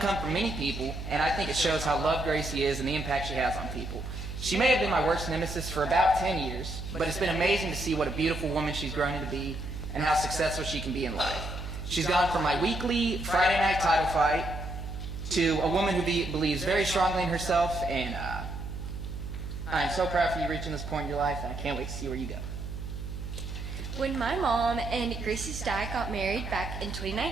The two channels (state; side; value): noise; right; hum, 7 dB below the sound